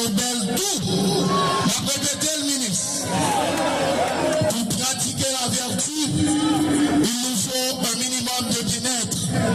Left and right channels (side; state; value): both; identical; correlation 1.00